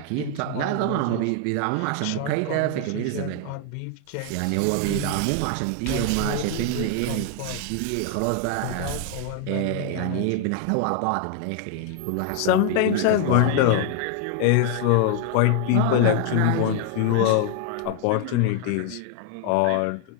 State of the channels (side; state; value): both; different; correlation 0.00